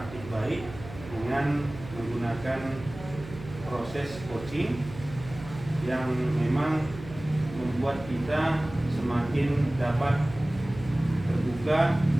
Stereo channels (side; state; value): right; noise; hum, 14 dB below the sound